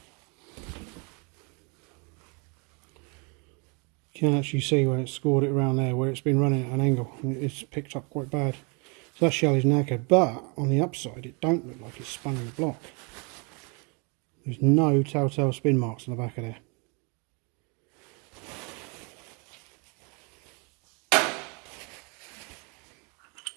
You can actually see where it's scored it around there, where it's been running at an angle. It's picked up quite bad. So that shell is knackered, but on the upside it don't look like it's spun in the block. There's no telltale spin marks on the back of there.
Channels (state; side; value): quieter; left; 33.2 dB